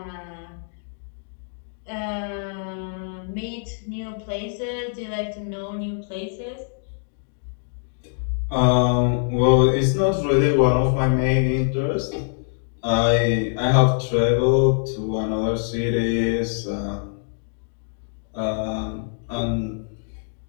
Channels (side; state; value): right; silent; digital silence